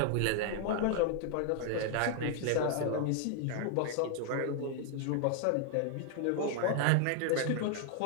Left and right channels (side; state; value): both; different; correlation 0.00